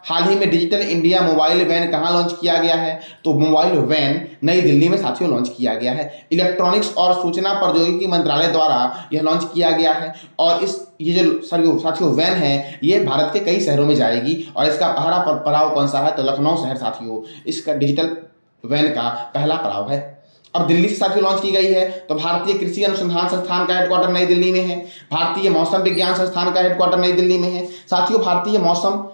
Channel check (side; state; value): both; inverted; correlation -1.00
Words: हाल ही में डिजिटल इंडिया मोबाइल वैन कहाँ लॉन्च किया गया है? तो मोबाइल वैन नई दिल्ली में साथियों लॉन्च किया गया है। इलेक्ट्रॉनिक्स और सूचना प्रौद्योगिकी मंत्रालय द्वारा यह लॉन्च किया गया है। और ये जो साथियों वैन है ये भारत के कई शहरों में जाएगी। और इसका पहला पड़ाव कौन सा है? तो लखनऊ शहर साथियों इसका डिजिटल वैन का पहला पड़ाव है। अब दिल्ली से साथियों लॉन्च की गई है। तो भारतीय कृषि अनुसंधान संस्थान का हेडक्वार्टर नई दिल्ली में है। भारतीय मौसम विज्ञान संस्थान का हेडक्वार्टर नई दिल्ली में है साथियों। भारतीय मौसम